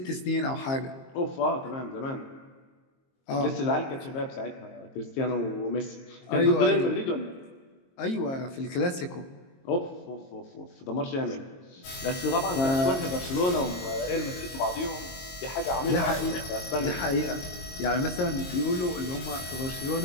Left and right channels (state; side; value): late; right; 22 ms